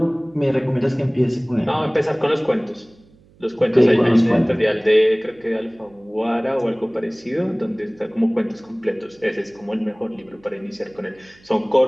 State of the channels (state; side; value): noise; right; hum, 29 dB below the sound